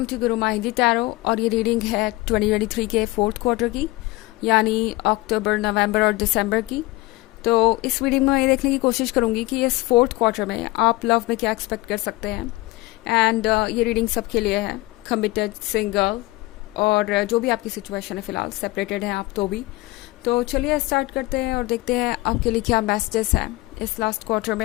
to Guru माहिंदी tarot. और ये reading है 2023 के फोर्थ क्वार्टर की, यानी अक्टूबर, नवंबर और दिसंबर की। तो इस वीडियो में मैं ये देखने की कोशिश करूंगी कि इस फोर्थ क्वार्टर में आप लव में क्या एक्सपेक्ट कर सकते हैं। एंड ये रीडिंग सबके लिए है, कमिटेड, सिंगल और जो भी आपकी सिचुएशन है, फिलहाल सेपरेटेड हैं आप तो भी। तो चलिए स्टार्ट करते हैं और देखते हैं आपके लिए क्या मैसेजेस हैं इस लास्ट क्वार्टर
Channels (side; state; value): right; quieter; 20.8 dB